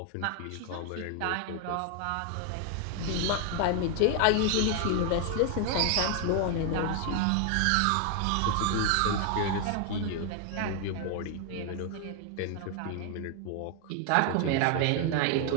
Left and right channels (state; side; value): different; both; correlation 0.00